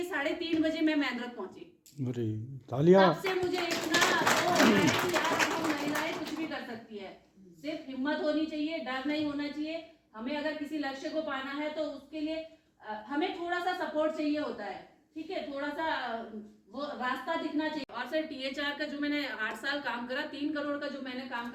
3:30 बजे मैं मेंद्रत पहुंची। अरे तालियां। तब से मुझे इतना कि यार हम महिलाएं कुछ भी कर सकती है, सिर्फ हिम्मत होनी चाहिए, डर नहीं होना चाहिए। हमें अगर किसी लक्ष्य को पाना है तो उसके लिए हमें थोड़ा सा सपोर्ट चाहिए होता है, ठीक है, थोड़ा सा वो रास्ता दिखना चाहिए। और सर THR का जो मैंने 8 साल काम करा, 3 करोड़ का जो मैंने काम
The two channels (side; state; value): both; identical; correlation 1.00